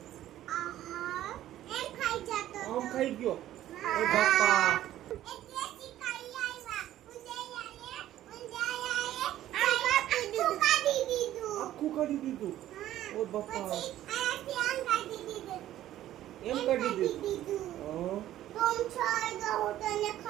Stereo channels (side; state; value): left; quieter; 13.1 dB